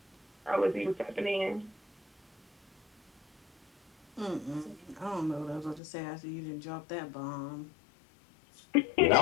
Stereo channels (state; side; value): drops out; right; at 5.8 s